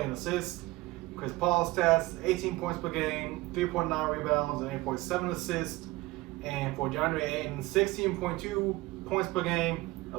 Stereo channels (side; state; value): left; quieter; 20.2 dB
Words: assists. Chris Paul stats, 18 points per game, 3.9 rebounds, and 8.7 assists. And for DeAndre Ayton, 16.2 points per game,